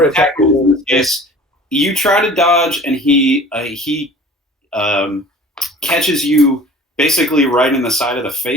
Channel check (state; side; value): normal; both; correlation 0.45